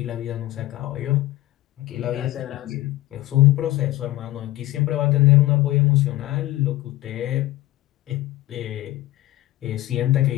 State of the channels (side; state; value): right; quieter; 16.8 dB